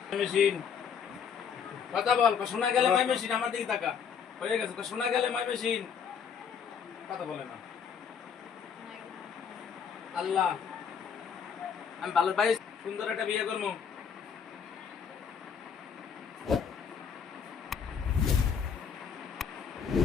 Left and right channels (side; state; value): right; quieter; 7.0 dB